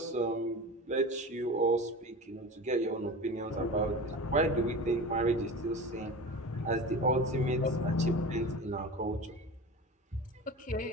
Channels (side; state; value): both; normal; correlation 0.32